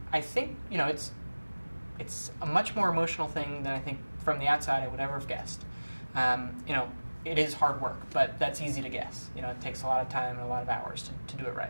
I think it's a much more emotional thing than I think from the outside I would ever have guessed. It is hard work, but that's easy to guess. It takes a lot of time and a lot of hours to do it right.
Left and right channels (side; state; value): both; inverted; correlation -1.00